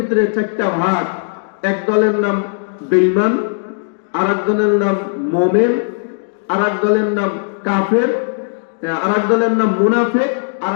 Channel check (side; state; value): right; silent; digital silence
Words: চারটা ভাগ, এক দলের নাম বেঈমান, আর এক দলের নাম মুমিন, আর এক দলের নাম কাফের, আর এক দলের নাম মুনাফিক, আর